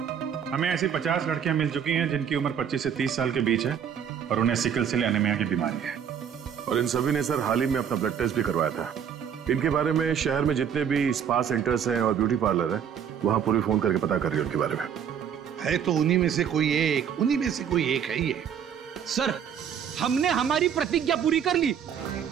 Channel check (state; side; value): quieter; left; 8.2 dB